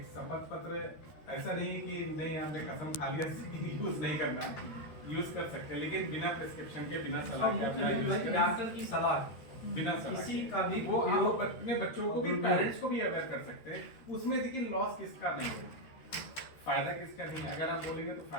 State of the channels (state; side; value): late; right; 13 ms